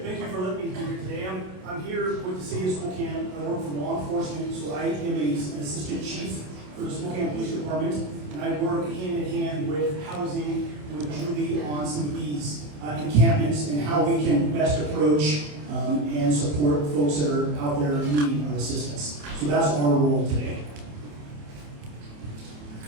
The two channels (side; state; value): left; late; 27 ms